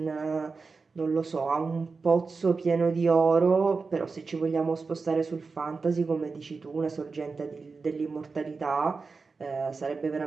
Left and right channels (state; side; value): quieter; left; 4.4 dB